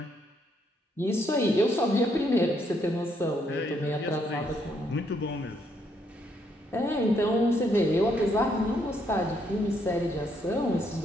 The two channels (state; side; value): normal; both; correlation 0.73